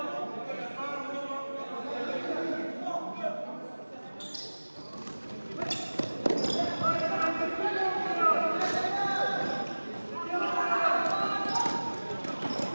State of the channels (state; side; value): inverted; both; correlation -1.00